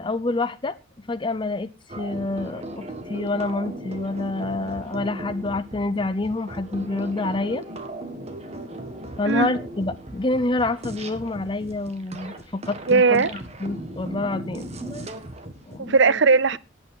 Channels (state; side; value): normal; both; correlation 0.12